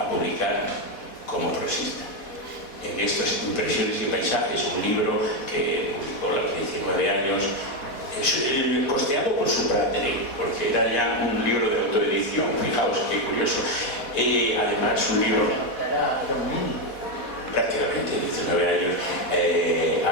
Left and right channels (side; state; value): right; late; 4.1 ms